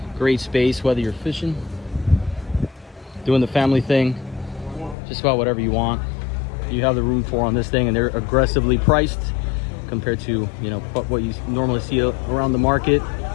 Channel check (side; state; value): right; drops out; at 5.0 s